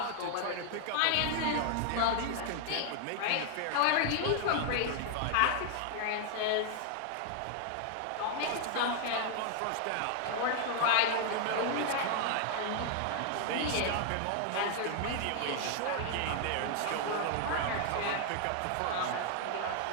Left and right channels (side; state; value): both; different; correlation 0.00